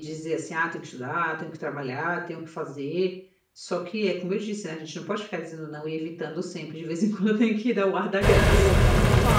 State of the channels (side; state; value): both; identical; correlation 1.00